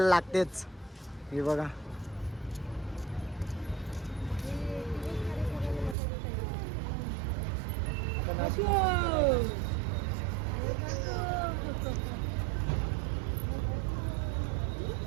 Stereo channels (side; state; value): left; drops out; at 6.0 s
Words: लागतेच. हे बघा,